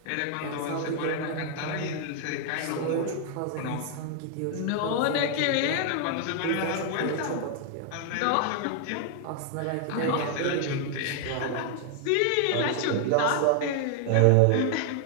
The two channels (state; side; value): different; both; correlation 0.00